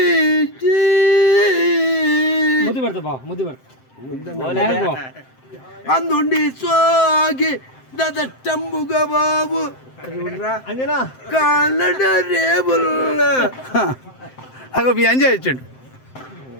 అందుండి సోగి దదట్టంబుగా బాబు కాళ్ళ రేబుల్ అగో మీ అంజా ఇచ్చాడు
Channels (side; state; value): right; late; 7.7 ms